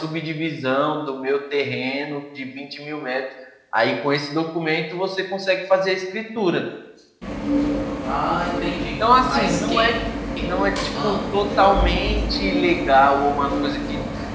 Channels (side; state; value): both; identical; correlation 1.00